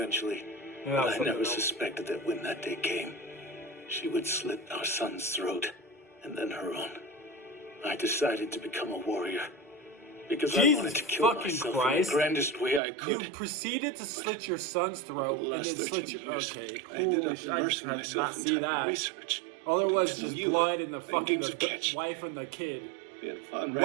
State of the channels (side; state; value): left; drops out; at 12.8 s